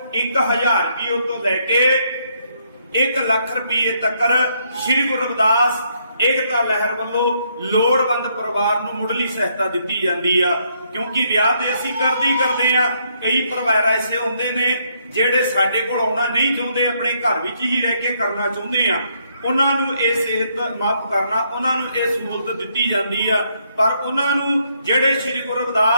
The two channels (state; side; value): inverted; both; correlation -0.73